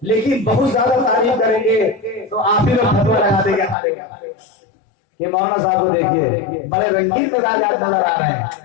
لیکن بہت زیادہ تعریف کریں گے تو آپ ہی لوگ فتویٰ لگا دیں گے. یہ مولانا صاحب کو دیکھیے، بڑے رنگین مزاجات نظر آ رہے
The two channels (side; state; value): right; drops out; at 3.8 s